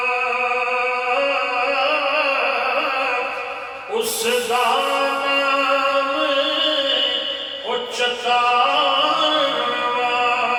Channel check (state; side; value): identical; both; correlation 1.00